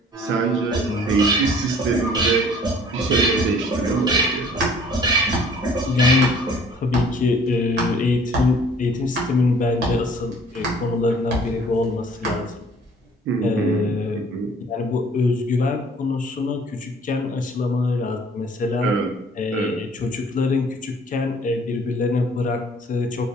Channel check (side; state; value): both; normal; correlation 0.54